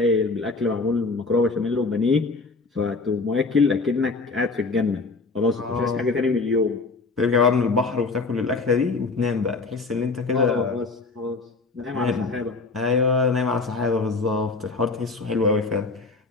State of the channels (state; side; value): quieter; right; 3.9 dB